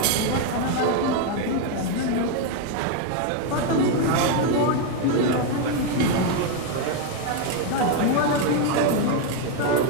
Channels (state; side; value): different; both; correlation 0.01